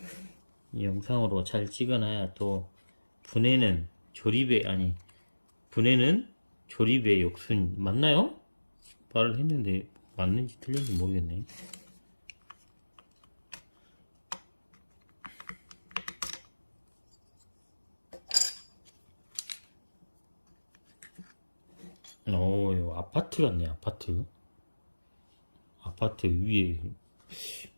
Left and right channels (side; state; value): both; inverted; correlation -1.00